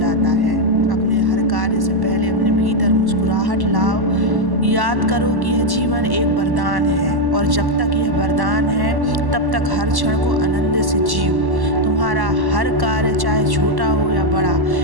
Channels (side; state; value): left; late; 1.1 ms